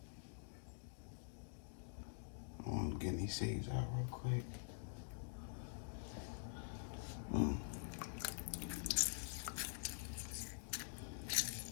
I'm getting these seeds out real quick.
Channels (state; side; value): silent; right; digital silence